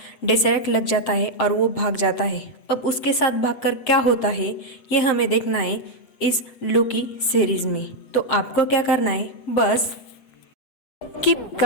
डेसरेक्ट लग जाता है और वो भाग जाता है। अब उसके साथ भागकर क्या होता है ये हमें देखना है इस लोकी सीरीज में। तो आपको क्या करना है, बस keep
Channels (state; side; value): late; right; 7.6 ms